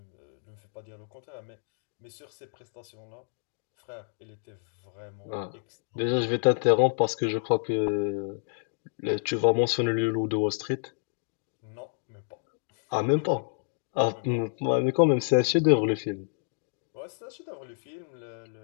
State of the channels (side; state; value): right; silent; digital silence